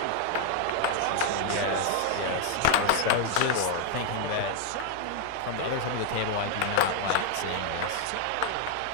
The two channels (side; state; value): both; different; correlation 0.00